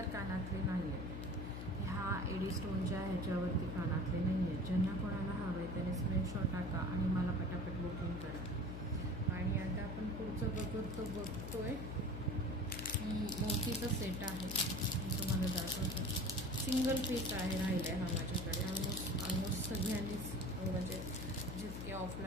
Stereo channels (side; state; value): left; noise; hum, 7 dB below the sound